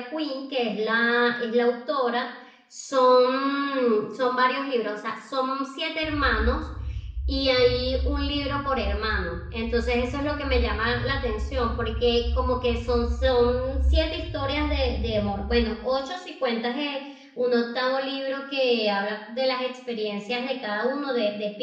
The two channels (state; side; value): identical; both; correlation 1.00